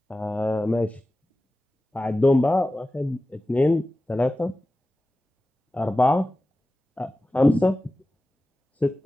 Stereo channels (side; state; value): both; normal; correlation 0.95